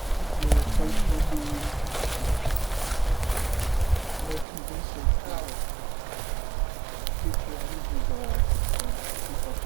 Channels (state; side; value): drops out; left; at 4.5 s